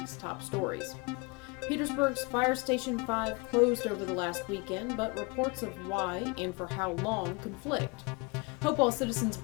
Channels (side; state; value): right; quieter; 28.7 dB